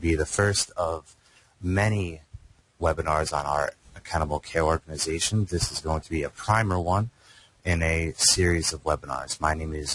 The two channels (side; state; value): both; identical; correlation 1.00